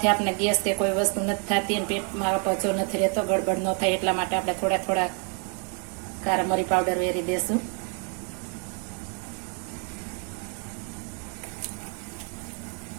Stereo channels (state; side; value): quieter; left; 39.9 dB